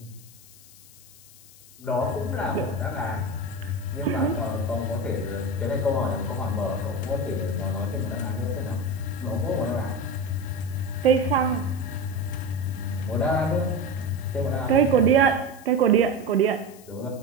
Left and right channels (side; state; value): left; noise; hiss, 22 dB below the sound